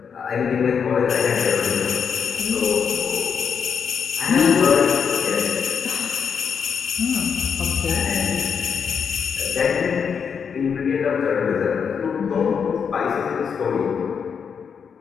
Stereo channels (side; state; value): right; quieter; 6.7 dB